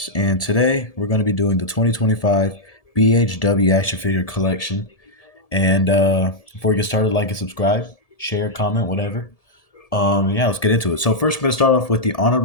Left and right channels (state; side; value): late; right; 1.7 ms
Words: and today we're going to be doing the 2025 BHW action figure collection. And before we get started, like and subscribe, share, comment, whatever. Yeah, let's get into it. So first, we're going to start off with the